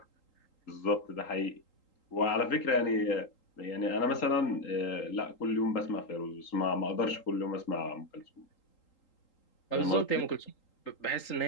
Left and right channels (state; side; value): late; right; 3.8 ms